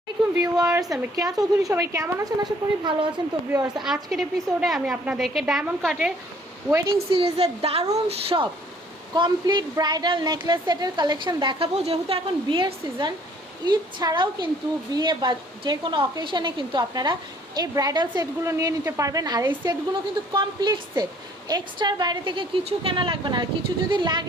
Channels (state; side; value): normal; both; correlation 0.59